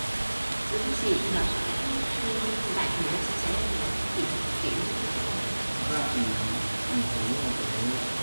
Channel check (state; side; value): inverted; both; correlation -1.00